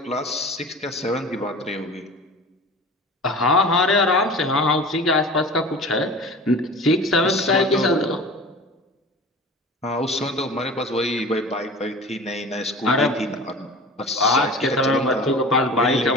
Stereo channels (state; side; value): normal; both; correlation 0.38